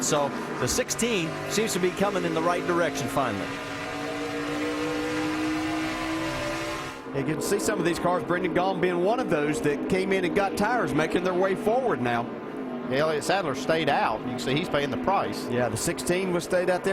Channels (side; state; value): both; identical; correlation 1.00